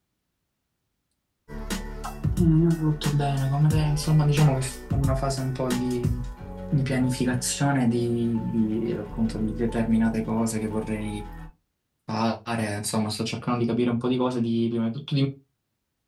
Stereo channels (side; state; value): both; identical; correlation 1.00